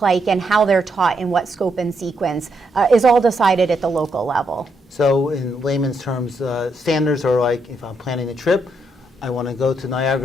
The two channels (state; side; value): normal; both; correlation 0.78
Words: like, and how they're taught in what scope and sequence is all decided at the local level. So in layman's terms, standards are like, if I'm planning a trip, I want to go to